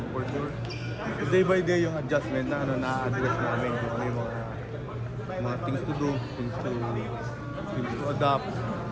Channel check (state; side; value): identical; both; correlation 1.00